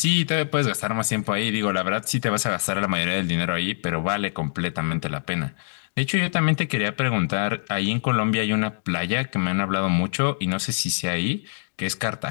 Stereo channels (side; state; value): right; silent; digital silence